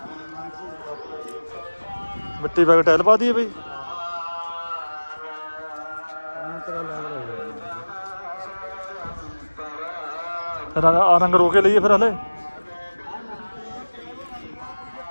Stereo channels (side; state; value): both; inverted; correlation -1.00